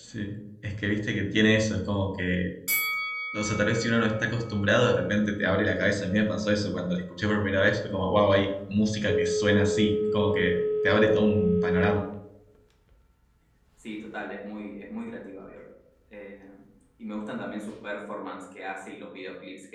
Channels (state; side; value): identical; both; correlation 1.00